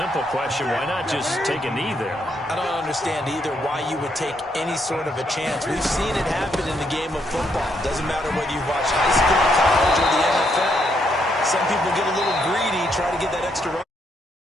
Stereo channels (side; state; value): both; normal; correlation 0.75